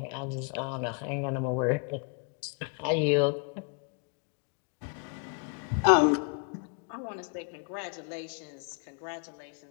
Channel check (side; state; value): right; quieter; 39.1 dB